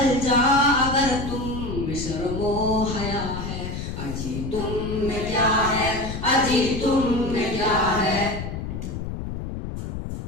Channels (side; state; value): left; noise; rumble, 6 dB below the sound